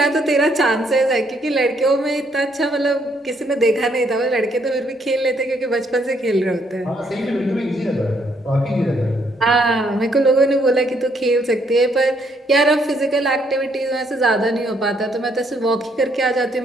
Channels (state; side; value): normal; both; correlation 0.71